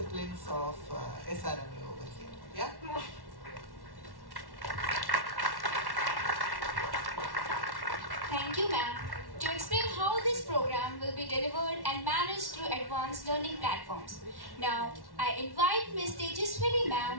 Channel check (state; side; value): late; left; 1.1 ms